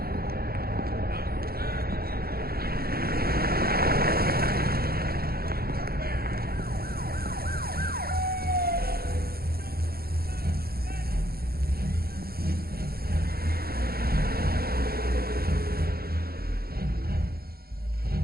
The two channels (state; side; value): late; left; 0.44 ms